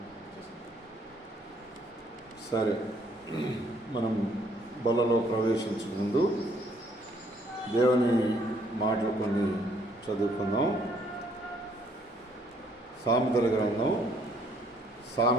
సరే, మనం బలలో ప్రవేశించక ముందు దేవుని మాటలు కొన్ని చదువుకుందాం. సామెతల గ్రంథం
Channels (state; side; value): normal; both; correlation 0.65